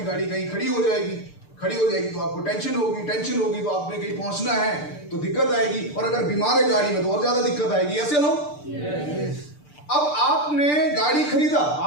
गाड़ी कहीं खड़ी हो जाएगी, खड़ी हो जाएगी तो आपको टेंशन होगी, टेंशन होगी तो आपने कहीं पहुंचना है तो दिक्कत आएगी, और अगर बीमार है गाड़ी में तो और ज्यादा दिक्कत आएगी, ऐसे लो। अब आपने गाड़ी खरीदा,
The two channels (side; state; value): right; late; 6.8 ms